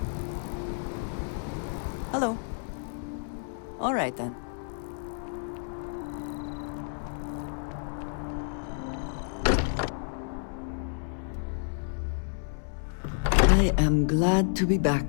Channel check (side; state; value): right; silent; 58 dB below the other